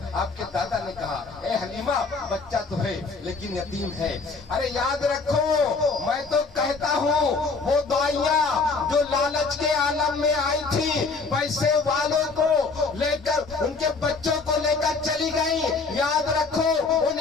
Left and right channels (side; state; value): right; quieter; 4.2 dB